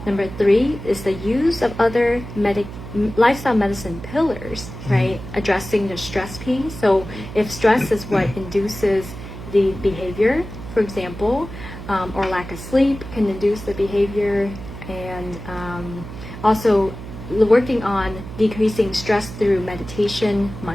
Number 3 is the use of other lifestyle medicine pillars, right? Addressing the stress piece. So if stress is what induces the behavior, for example, or lack of sleep can induce the behavior, and also working on decreasing stress through meditation,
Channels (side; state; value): right; noise; hum, 11 dB below the sound